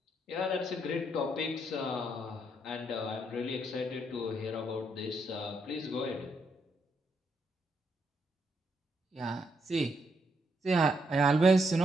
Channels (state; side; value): normal; both; correlation 0.77